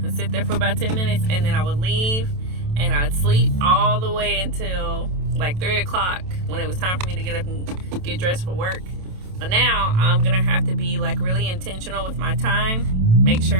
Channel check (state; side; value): late; left; 27 ms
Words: and sit there for about 10 minutes, and then I would leave, and I'd sleep all the way until like 3 o'clock when it was time for me to get up and get dressed for work. But now I'm gonna have to be like really intentional with my time, make